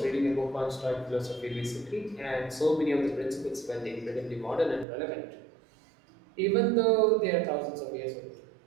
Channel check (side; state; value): left; drops out; at 4.9 s